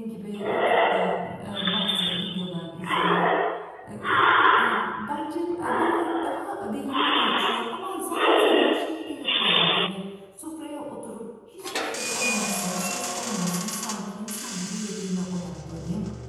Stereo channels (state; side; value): identical; both; correlation 1.00